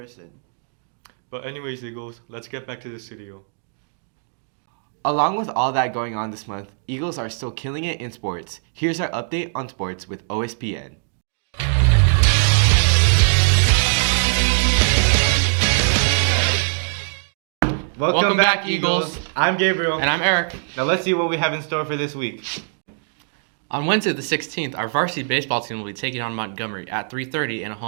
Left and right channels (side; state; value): left; silent; digital silence